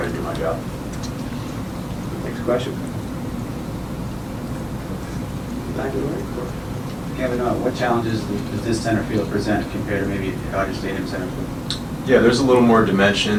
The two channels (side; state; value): both; identical; correlation 1.00